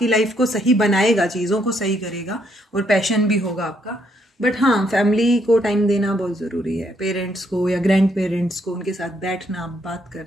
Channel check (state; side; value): normal; both; correlation 0.72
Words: लाइफ को सही बनाएगा, चीजों को सही करेगा और पैशन भी होगा आपका। बट हाँ, फैमिली को टाइम देना बहुत जरूरी है, पेरेंट्स को या ग्रैंड पेरेंट्स को, उनके साथ बैठना, बात